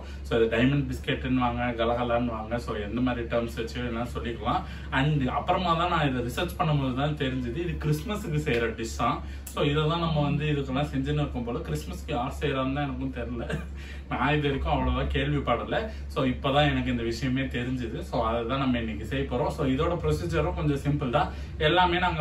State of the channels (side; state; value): both; identical; correlation 1.00